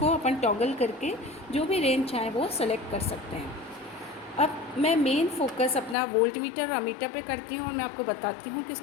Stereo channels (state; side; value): drops out; right; at 6.0 s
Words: अपन टॉगल करके जो भी रेंज चाहें वो सेलेक्ट कर सकते हैं। अब मैं मेन फोकस अपना वोल्टमीटर और अमीटर पे करती हूँ और मैं आपको बताती हूँ कि